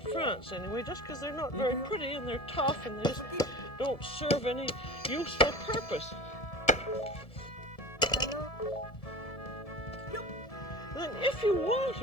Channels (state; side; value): late; right; 1.7 ms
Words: France anyway, just because they're not very pretty and they're tough and they just don't serve any useful purpose. Then if you want